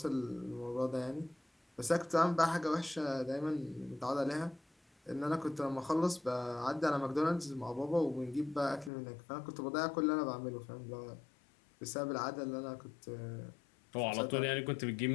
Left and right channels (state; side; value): drops out; right; at 8.9 s